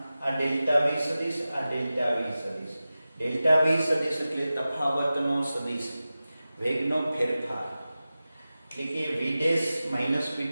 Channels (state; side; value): inverted; both; correlation -0.95